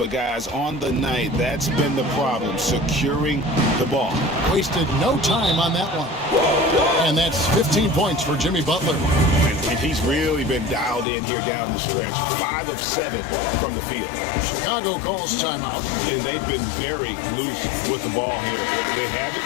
guys, on the night, that's been the problem, securing the ball. Wasted no time on that one. And that's 15 points for Jimmy Butler. And he's really been dialed in here down the stretch. 5 of 7 from the field. Chicago calls timeout. And they've been very loose with the ball here. They haven't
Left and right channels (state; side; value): drops out; right; at 11.1 s